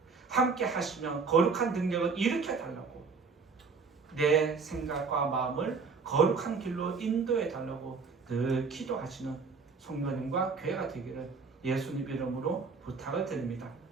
함께 하시면 거룩한 능력을 일으켜 달라고, 내 생각과 마음을 거룩한 길로 인도해 달라고 늘 기도하시는 성도님과 교회가 되기를 예수님 이름으로 부탁을 드립니다.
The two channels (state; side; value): quieter; left; 4.8 dB